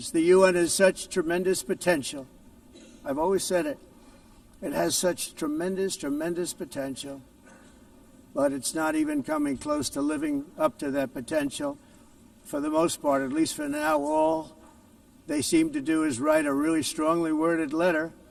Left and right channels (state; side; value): identical; both; correlation 1.00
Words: The UN has such tremendous potential. I've always said it. It has such tremendous, tremendous potential, but it's not even coming close to living up to that potential. For the most part, at least for now, all they seem to do is write a really strongly worded letter